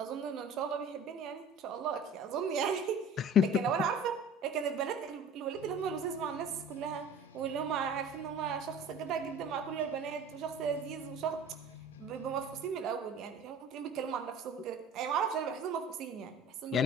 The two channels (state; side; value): normal; both; correlation 0.42